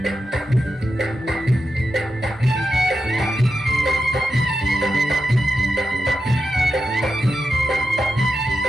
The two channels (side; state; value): both; normal; correlation 0.88